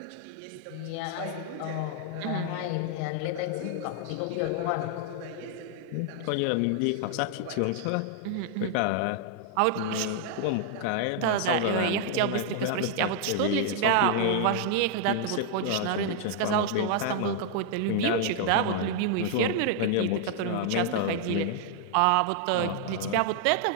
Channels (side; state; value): both; different; correlation 0.00